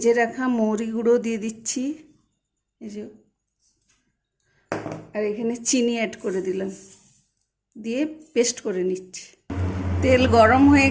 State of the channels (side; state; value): both; identical; correlation 1.00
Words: রাখা মৌরি গুঁড়ো দিয়ে দিচ্ছি, এই যে, আর এখানে চিনি অ্যাড করে দিলাম, দিয়ে পেস্ট করে নিচ্ছি। তেল গরম হয়ে